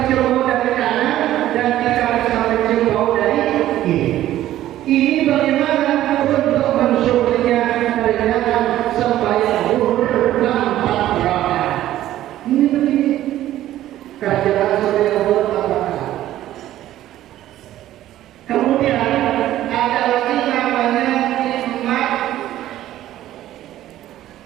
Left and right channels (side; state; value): left; quieter; 13.5 dB